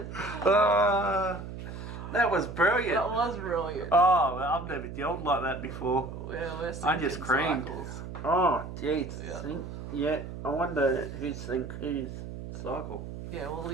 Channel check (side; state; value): right; noise; hum, 9 dB below the sound